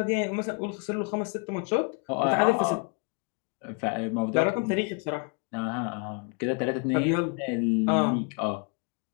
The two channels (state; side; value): quieter; right; 35.1 dB